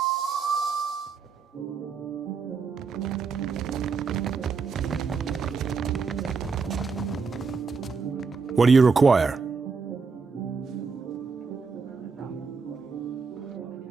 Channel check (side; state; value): left; quieter; 5.1 dB